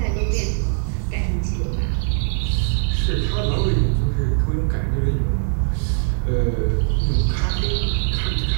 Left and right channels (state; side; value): silent; left; digital silence